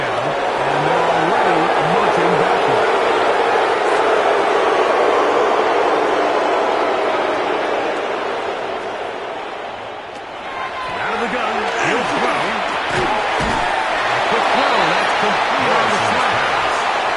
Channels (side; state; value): both; identical; correlation 1.00